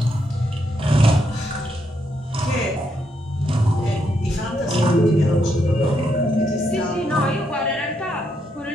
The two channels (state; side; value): normal; both; correlation 0.78